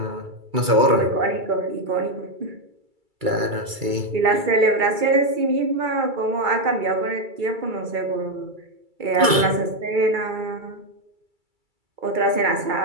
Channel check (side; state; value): left; late; 2.3 ms